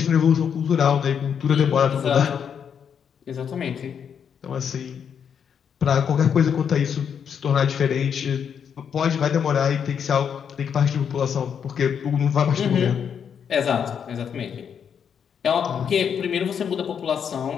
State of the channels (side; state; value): right; quieter; 7.6 dB